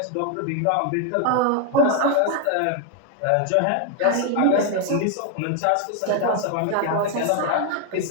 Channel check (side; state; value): both; different; correlation 0.01